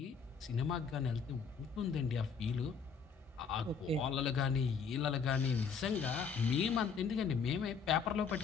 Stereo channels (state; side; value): quieter; right; 5.8 dB